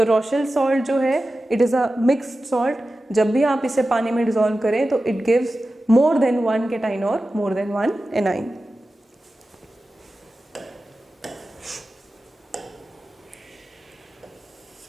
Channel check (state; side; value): normal; both; correlation 0.94